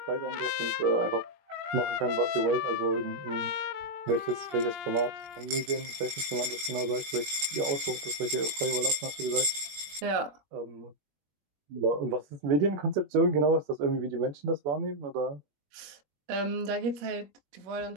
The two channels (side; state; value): left; late; 20 ms